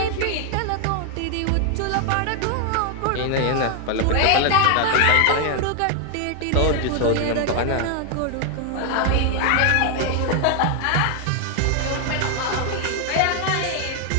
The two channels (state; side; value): different; both; correlation 0.00